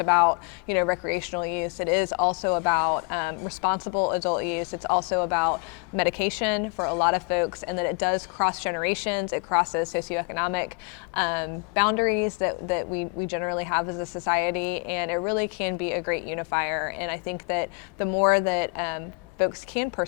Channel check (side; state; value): right; quieter; 34.5 dB